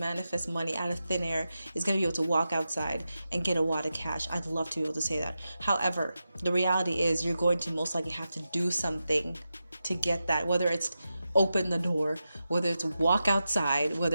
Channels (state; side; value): inverted; both; correlation -0.90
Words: money out of thin air is going to be able to walk outside and get a wad of cash. I'd love to be able to say that. However, the reality is you're going to most likely have to do something to get that, whether it's open the door, whether it's walk outside,